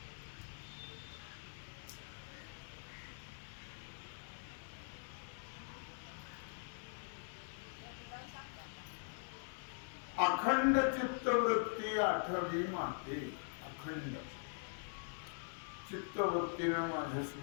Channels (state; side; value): silent; right; digital silence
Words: अखंड चित्तवृत्ती आठवी माते। अखंड चित्तवृत्तीनं माझं